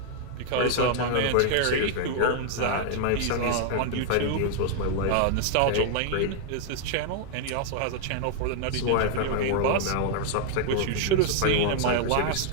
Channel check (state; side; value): different; both; correlation 0.00